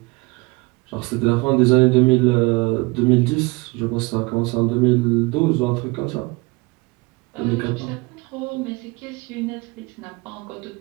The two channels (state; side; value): quieter; left; 25.7 dB